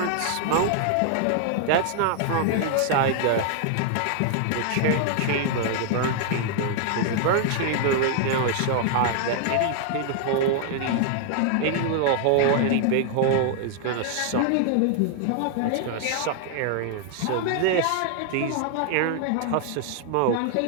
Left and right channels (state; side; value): different; both; correlation 0.00